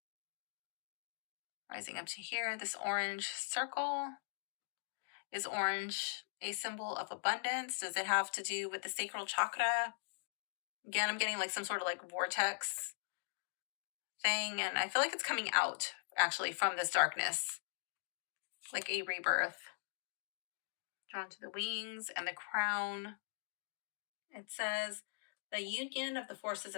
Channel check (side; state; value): right; silent; digital silence